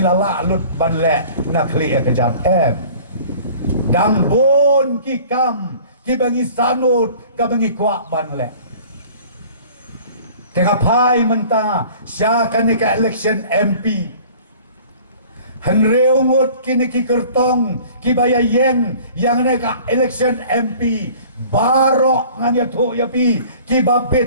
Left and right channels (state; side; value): inverted; both; correlation -0.48